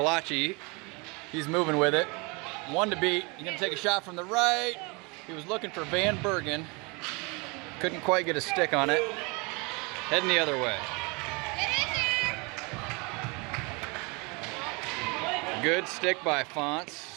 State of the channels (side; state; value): left; quieter; 29.0 dB